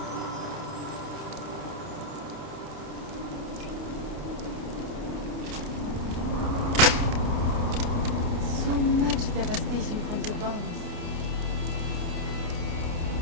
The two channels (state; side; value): late; left; 29 ms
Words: So much devastation from the bombs.